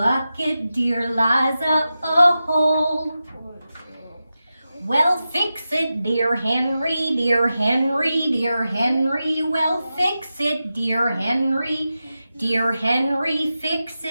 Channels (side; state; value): both; inverted; correlation -0.92